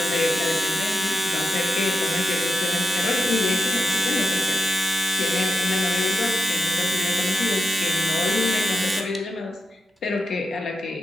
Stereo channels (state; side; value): normal; both; correlation 0.87